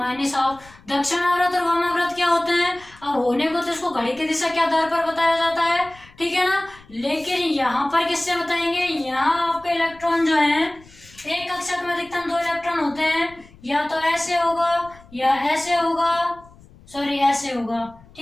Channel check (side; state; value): left; noise; rumble, 24 dB below the sound